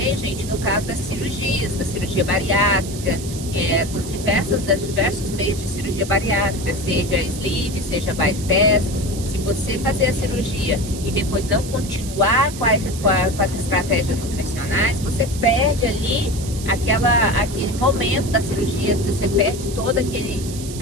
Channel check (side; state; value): right; noise; hiss, 12 dB below the sound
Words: gente, no caso das cirurgias, da cirurgia bariátrica, das diversos meios de cirurgia bariátrica, seja sleeve, seja bypass. Se você fazer a cirurgia e depois não continuar com as estratégias nutricionais, você perde ali aquele momento da cirurgia, você perde toda